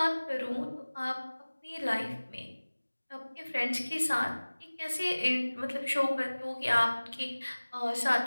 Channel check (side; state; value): both; inverted; correlation -1.00